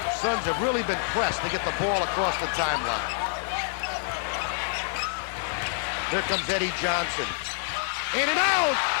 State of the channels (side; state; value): right; silent; 59 dB below the other